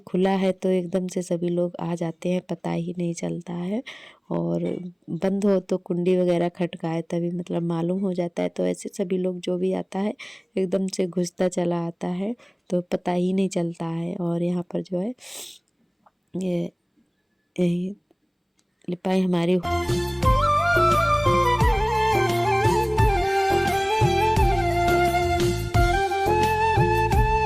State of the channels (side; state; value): both; identical; correlation 1.00